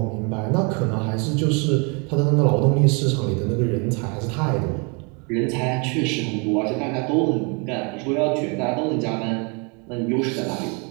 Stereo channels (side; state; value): left; quieter; 33.2 dB